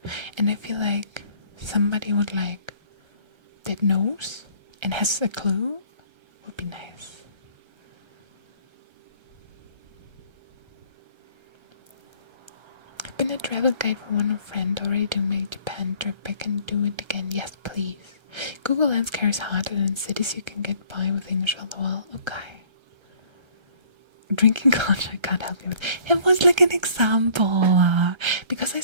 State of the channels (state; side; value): late; left; 1.3 ms